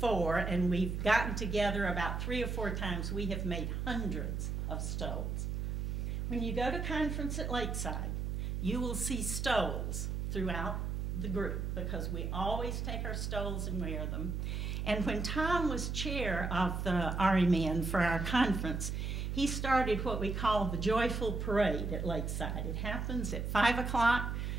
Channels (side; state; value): right; noise; hum, 2 dB below the sound